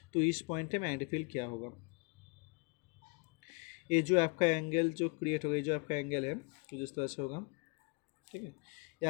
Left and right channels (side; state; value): right; quieter; 31.3 dB